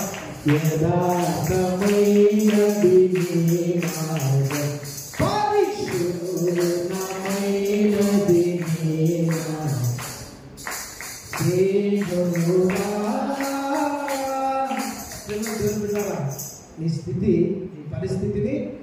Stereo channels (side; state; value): both; identical; correlation 1.00